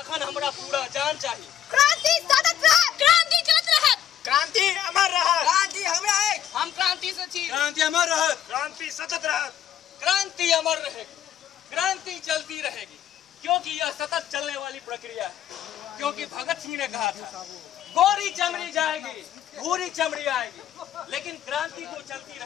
हमरा पूरा जान चाहिए। क्रांति सतत रहत, क्रांति चलत रहत, क्रांति अमर रहत, क्रांति हमरा एक, हम क्रांति से छी। क्रांति अमर रहत, क्रांति सतत रहत। क्रांति अमर रहेगी, क्रांति चलती रहेगी, क्योंकि यह सतत चलने वाली प्रक्रिया है। क्योंकि भगत सिंह ने कहा था गोरी चमड़ी जाएगी, भूरी चमड़ी आएगी, लेकिन क्रांति तो चलती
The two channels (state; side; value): quieter; right; 10.3 dB